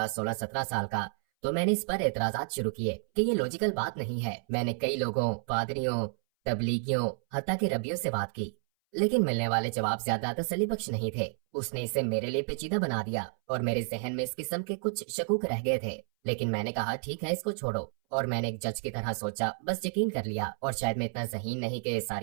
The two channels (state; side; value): silent; left; 57 dB below the other